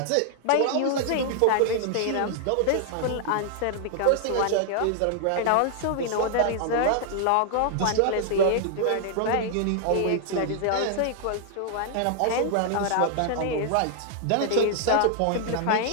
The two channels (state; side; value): different; both; correlation 0.00